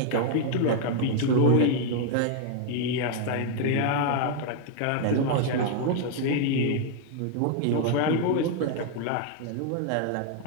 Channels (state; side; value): different; both; correlation 0.00